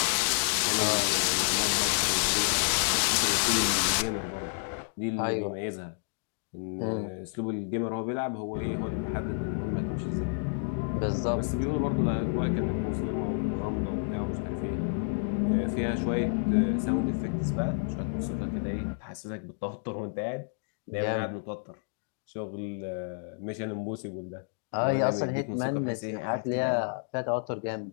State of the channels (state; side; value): silent; right; digital silence